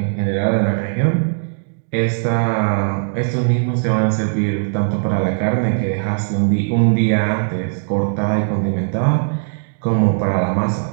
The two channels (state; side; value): silent; left; 65 dB below the other